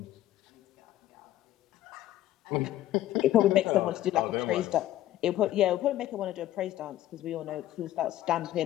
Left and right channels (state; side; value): quieter; right; 13.8 dB